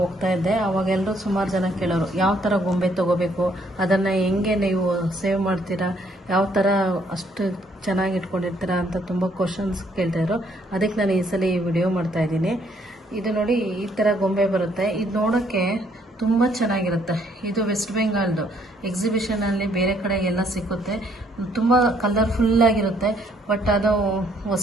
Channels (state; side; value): normal; both; correlation 0.67